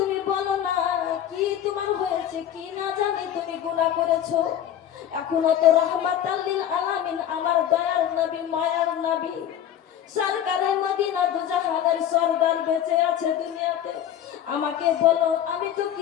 বলো না কি তোমার হয়েছে, কি না জানি তুমি গুনাহ করেছো। এখনো তো রাহমাতাল লিল আলামিন আমার দয়ার নবী, মায়ার নবী, সরকারে মদিনা দুজাহানের সরদার বেঁচে আছে দুনিয়াতে। আমাকে বলো, আমি তো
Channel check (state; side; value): quieter; right; 10.4 dB